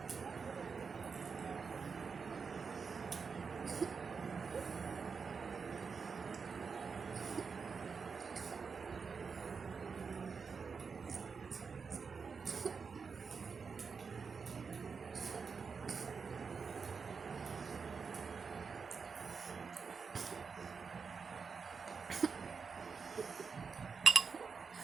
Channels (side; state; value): left; quieter; 5.4 dB